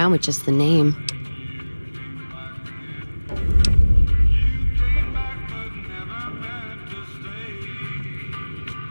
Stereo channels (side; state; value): both; inverted; correlation -1.00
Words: with just the name.